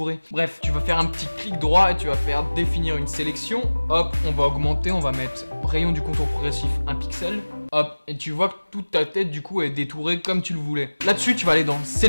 Bref, tu vas faire un petit clic droit et tu vas faire définir une sélection. Hop, on va augmenter, on va mettre rayon du contour progressif 1 pixel. Hop, et tu vois que toute ta tête du coup est détourée comme tu le voulais. Là-dessus, tu vas aller dans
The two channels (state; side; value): inverted; both; correlation -1.00